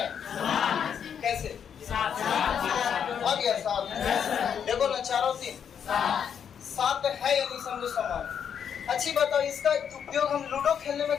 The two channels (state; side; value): quieter; right; 7.9 dB